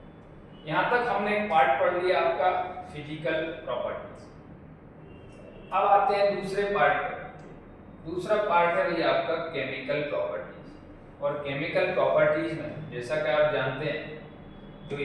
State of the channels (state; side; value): identical; both; correlation 1.00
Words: यहां तक हमने एक पार्ट पढ़ लिया आपका फिजिकल प्रॉपर्टीज। अब आते हैं दूसरे पार्ट पर। दूसरा पार्ट है भैया आपका केमिकल प्रॉपर्टीज। और केमिकल प्रॉपर्टीज में जैसा कि आप जानते हैं जो